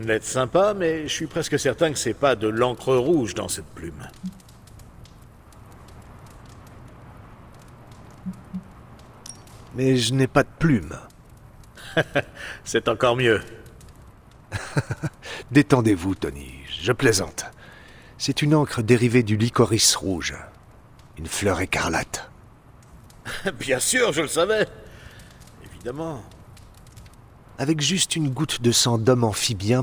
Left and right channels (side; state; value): both; identical; correlation 1.00